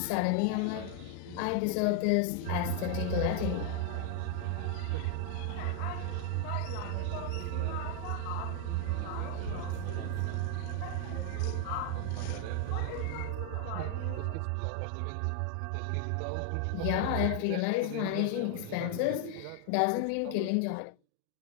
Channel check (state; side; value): different; both; correlation 0.00